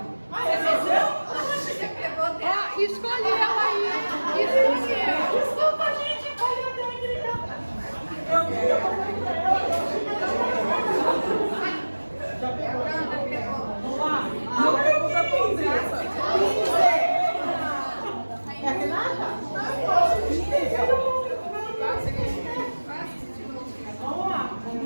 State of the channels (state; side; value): inverted; both; correlation -1.00